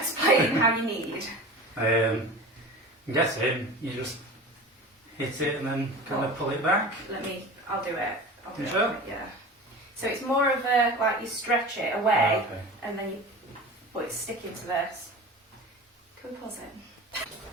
how you knead. I'm guessing you just hit it and then kind of pull it back. I'll do it. You sure? Yeah. So it's more of a, like you stretch it away, okay. and then it's sticking to this. Can we pause it?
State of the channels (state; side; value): normal; both; correlation 0.34